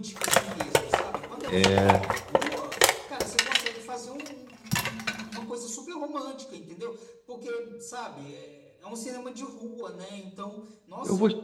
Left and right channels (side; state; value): both; identical; correlation 1.00